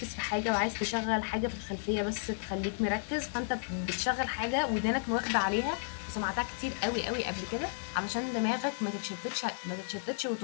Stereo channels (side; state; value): right; silent; digital silence